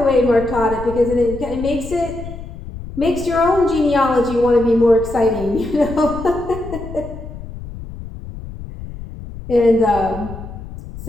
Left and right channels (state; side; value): noise; left; rumble, 12 dB below the sound